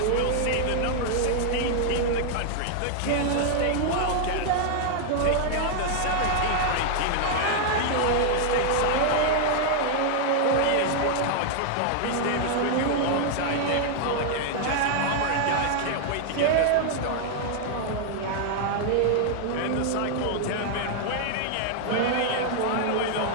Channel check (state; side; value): different; both; correlation 0.00